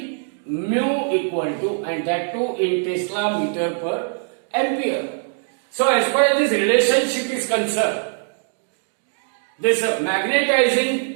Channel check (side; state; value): left; silent; 63 dB below the other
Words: Mu equal to, and that too in Tesla meter per ampere. So as far as this relationship is concerned, this